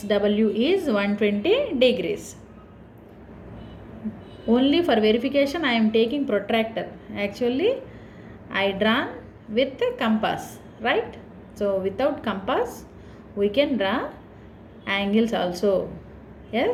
is 120 degrees. Only for verification I am taking protractor. Actually I drawn with the compass, right? So without compass we can draw angles also.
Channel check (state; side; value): identical; both; correlation 1.00